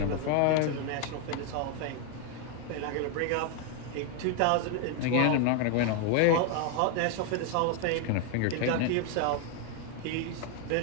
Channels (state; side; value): different; both; correlation 0.01